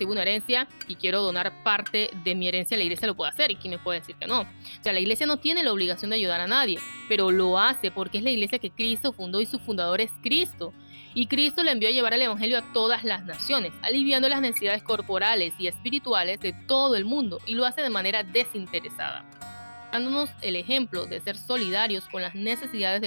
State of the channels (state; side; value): inverted; both; correlation -1.00